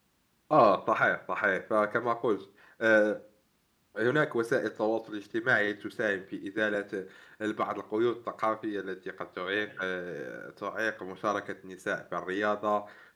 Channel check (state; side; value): identical; both; correlation 1.00